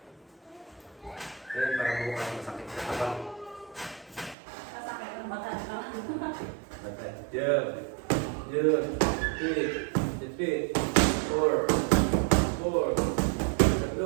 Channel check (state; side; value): drops out; left; at 4.4 s